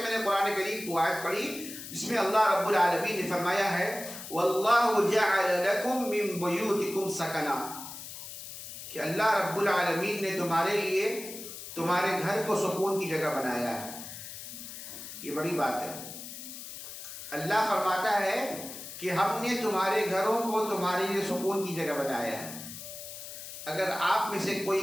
मैंने कुरान करीम की आयत पढ़ी, इसमें अल्लाह रब्बुल आलमीन ने फरमाया है वल्लाहु जअल लकुम मिन बुयूतिकुम सकना, कि अल्लाह रब्बुल आलमीन ने तुम्हारे लिए तुम्हारे घर को सुकून की जगह बनाया है। ये बड़ी बात है। अल्लाह फरमाता है कि हमने तुम्हारे घरों को तुम्हारे लिए सुकून की जगह बनाया है। अगर आप में से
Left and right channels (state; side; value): noise; left; hiss, 11 dB below the sound